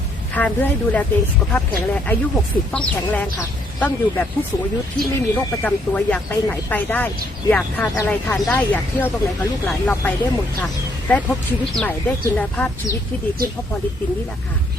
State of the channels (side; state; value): both; normal; correlation 0.69